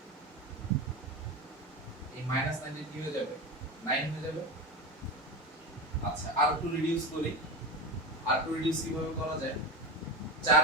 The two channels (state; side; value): normal; both; correlation 0.21